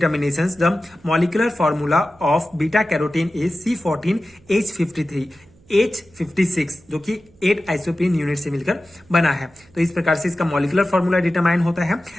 the molecular formula of beta carotene is C14H53 H56 जो कि 8 आइसोप्रीन यूनिट से मिलकर बना है। तो इस प्रकार से इसका मॉलिक्यूलर फॉर्मूला डिटरमाइन होता है।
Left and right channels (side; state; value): right; noise; hum, 29 dB below the sound